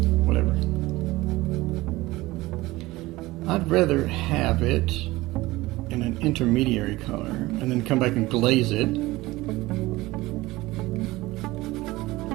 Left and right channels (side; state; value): left; quieter; 19.4 dB